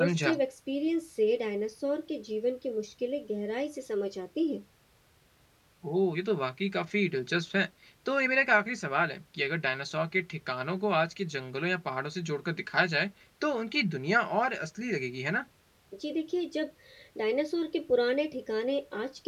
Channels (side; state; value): both; identical; correlation 1.00